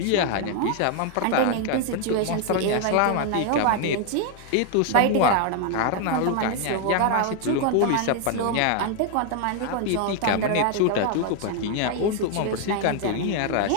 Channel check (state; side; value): different; both; correlation 0.00